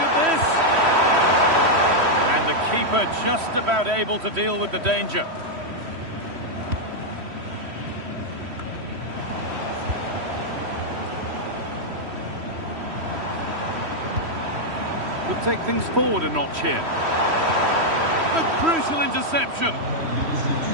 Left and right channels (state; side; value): late; left; 3.1 ms